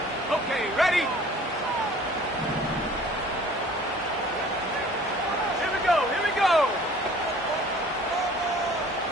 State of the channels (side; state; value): both; normal; correlation 0.50